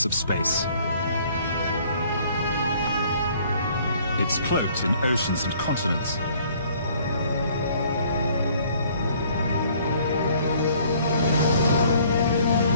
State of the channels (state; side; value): inverted; both; correlation -0.59